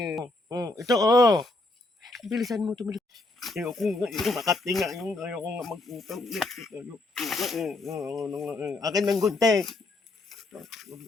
Ito oh. Bilisan mo. Ayaw ko nga eh. Makatinga yung ayaw ko nga mag-utang. Ayaw ko nga eh. Akin ng gunting.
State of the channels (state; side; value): quieter; right; 3.0 dB